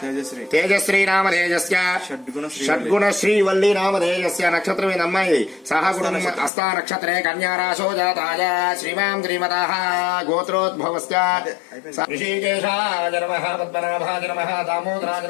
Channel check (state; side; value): drops out; right; at 6.5 s